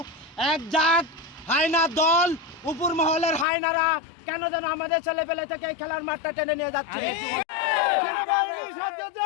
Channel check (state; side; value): drops out; right; at 3.5 s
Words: এক জাত হায়নার দল, উপর মহলের হায়নারা কেন যেন আমাদের ছেলেপেলে থেকে এই খেলার মাঠটা টেনে নিয়ে যাচ্ছে। সেনাবাহিনীর সাহায্য